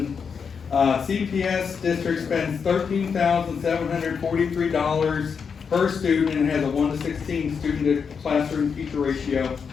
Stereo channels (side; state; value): right; quieter; 6.2 dB